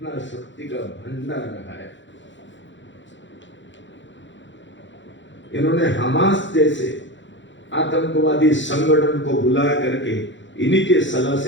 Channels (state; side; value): late; right; 0.54 ms